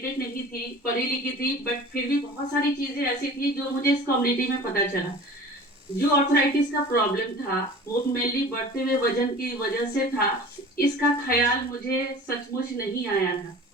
नहीं थी, पढ़ी लिखी थी, बट फिर भी बहुत सारी चीजें ऐसी थी जो मुझे इस कम्युनिटी में पता चला। जो आर्थराइटिस का प्रॉब्लम था वो मेनली बढ़ते हुए वजन की वजह से था। इसका ख्याल मुझे सचमुच नहीं आया था,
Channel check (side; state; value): both; normal; correlation 0.41